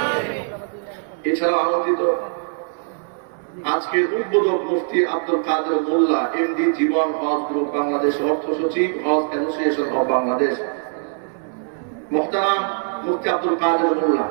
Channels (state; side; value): silent; left; 63 dB below the other